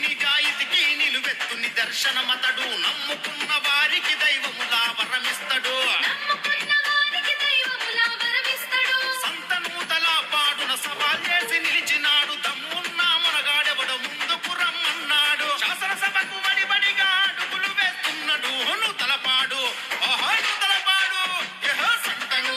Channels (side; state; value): both; identical; correlation 1.00